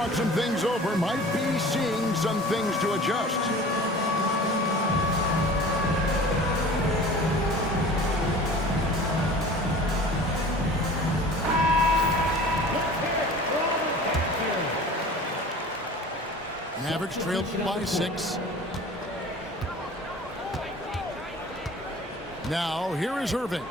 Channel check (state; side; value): normal; both; correlation 0.42